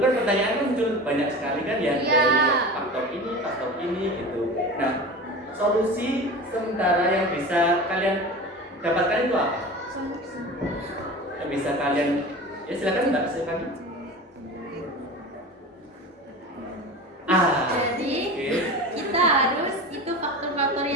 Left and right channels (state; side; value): normal; both; correlation 0.32